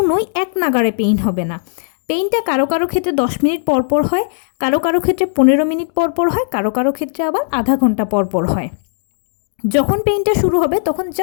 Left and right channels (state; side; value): silent; right; digital silence